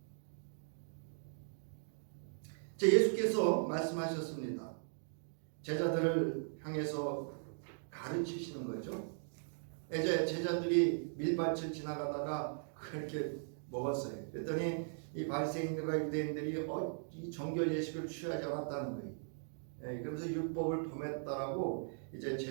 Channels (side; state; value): left; silent; digital silence